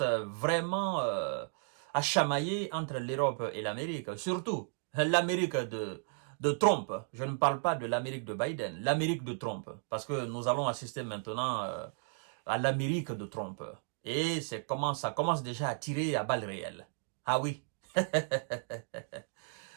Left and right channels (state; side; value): silent; left; 55 dB below the other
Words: vraiment à chamailler entre l'Europe et l'Amérique. Surtout l'Amérique de Trump. Je ne parle pas de l'Amérique de Biden, l'Amérique de Trump. Parce que nous allons assister maintenant à l'Amérique de Trump. Et ça commence déjà à tirer à balles réelles. Ah oui.